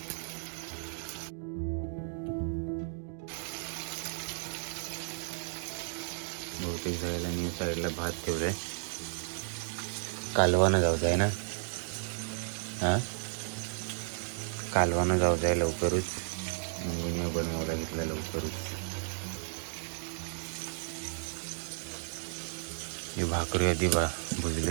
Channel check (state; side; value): silent; left; digital silence